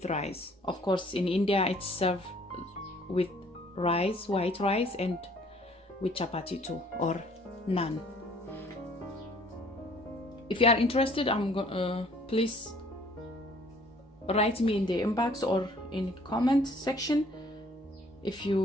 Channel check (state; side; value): normal; both; correlation 0.58